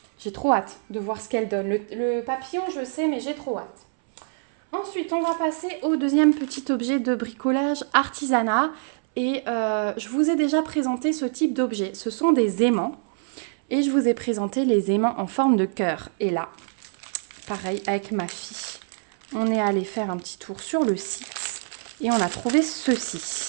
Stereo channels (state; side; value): silent; left; 62 dB below the other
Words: J'ai trop hâte de voir ce qu'elle donne. Le papillon, je sais, mais j'ai trop hâte. Ensuite, on va passer au deuxième petit objet de bricolage artisanat. Et je vous ai déjà présenté ce type d'objet. Ce sont des aimants. Et je vous ai présenté les aimants en forme de cœur. Et là, pareil avec ma fille, on est allé faire un petit tour sur le site. Et on a trouvé ceci.